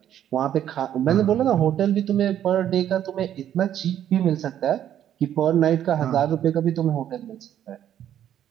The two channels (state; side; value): quieter; left; 10.6 dB